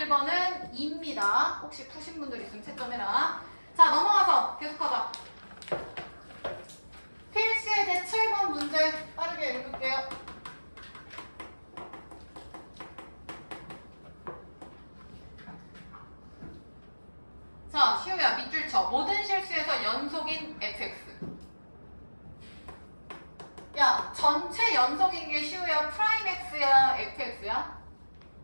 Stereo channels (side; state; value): both; inverted; correlation -1.00